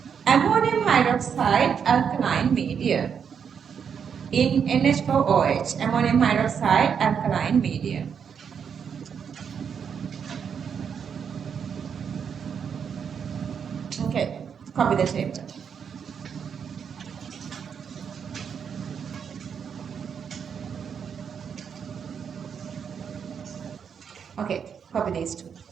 ammonium hydroxide alkaline medium, in NH4OH, ammonium hydroxide alkaline medium. Okay, copy the chapter. Okay, copy these two.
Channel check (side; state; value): left; quieter; 7.1 dB